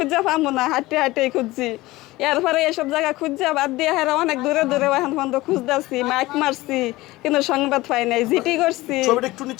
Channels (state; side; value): quieter; right; 19.1 dB